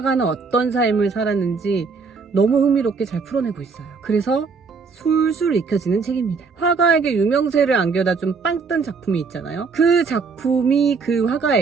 어떤 삶을 살았는지 너무 흥미롭게 잘 풀어내고 있어요. 그래서 술술 읽혀지는 책입니다. 화가에게 유명세를 안겨다 준 빵 뜬 작품이 있잖아요. 그 작품이 그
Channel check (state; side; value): quieter; left; 4.9 dB